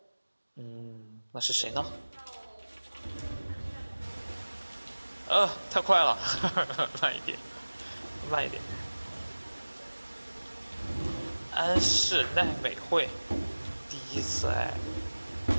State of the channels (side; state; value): both; inverted; correlation -1.00